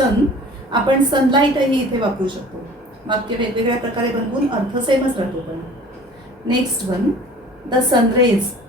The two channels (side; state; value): both; normal; correlation 0.46